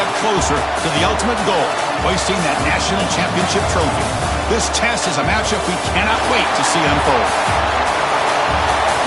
closer to the ultimate goal, hoisting that national championship trophy. This test is a matchup we cannot wait to see unfold.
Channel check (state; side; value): identical; both; correlation 1.00